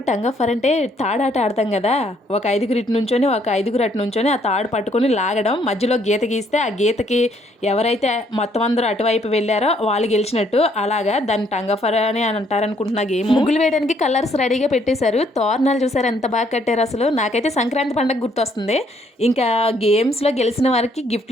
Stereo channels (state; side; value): normal; both; correlation 0.68